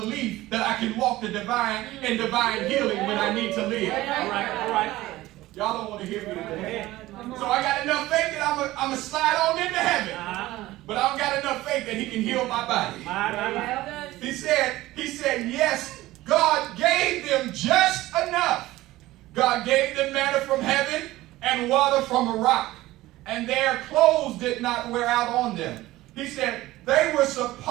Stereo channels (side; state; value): left; quieter; 17.2 dB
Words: that I can walk the divine healing when I need to live. All right. Y'all don't want to hear me today. So I got enough faith that I'm going to slide on into heaven. But I don't got enough faith that He can heal my body. He said, yes, God gave them just enough. God gave them manna from heaven and water from a rock. And their clothes did not wear out on them. He said they were